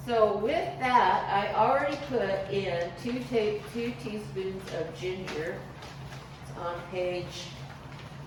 So with that, I already put in 2 teaspoons of ginger. It's on page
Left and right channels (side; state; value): both; identical; correlation 1.00